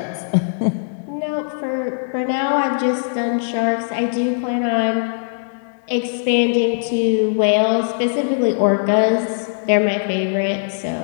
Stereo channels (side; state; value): right; silent; digital silence